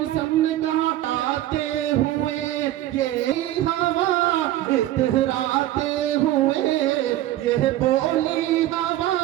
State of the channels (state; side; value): quieter; left; 14.2 dB